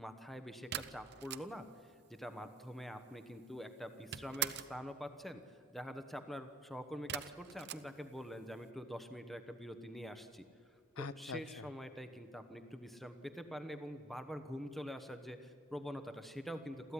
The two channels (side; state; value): both; normal; correlation 0.63